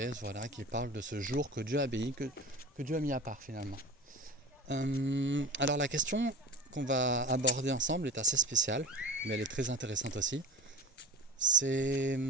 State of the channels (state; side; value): normal; both; correlation 0.34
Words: voilà, qui parle de ce jour que Dieu a béni, que Dieu a mis à part finalement. Alors la question qu'on va aborder ensemble est assez spéciale, mais elle est très intéressante aussi. C'est